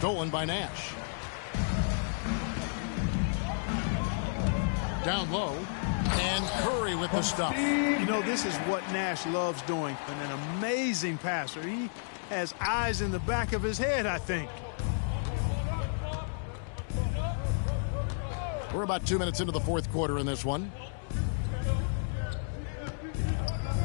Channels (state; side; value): silent; right; digital silence